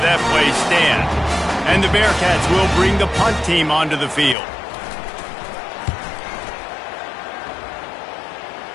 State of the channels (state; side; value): drops out; right; at 4.4 s